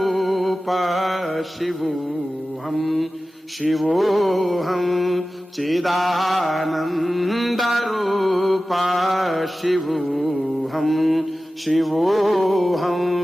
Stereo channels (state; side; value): normal; both; correlation 0.95